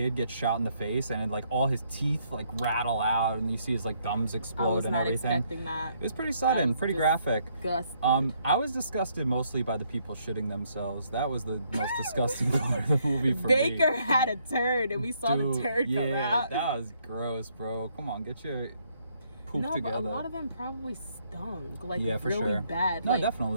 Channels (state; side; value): inverted; both; correlation -0.71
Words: get shot in the face and like all his teeth like rattle out and you see his like gums explode and everything. I was not expecting that. It was pretty sudden, pretty graphic. Disgusting. I was disgusted mostly by the people shitting themselves. That was the most disgusting part of the movie for me. Baker had a turd and we saw the turd come out. That was gross, bro. Come on, get your poop together. But a lot of them probably stunk, like for really sure. bad. No, like,